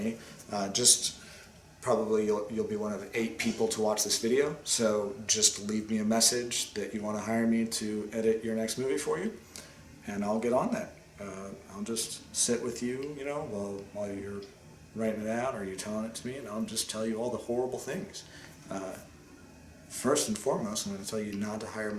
probably you'll be one of 8 people to watch this video. So just leave me a message that you want to hire me to edit your next movie for you, and I'll get on that. I'll just sit with you, while you're writing it out or you're telling it to me, and I'll just tell you all the horrible things. First and foremost, I'm going to tell you not to hire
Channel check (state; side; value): identical; both; correlation 1.00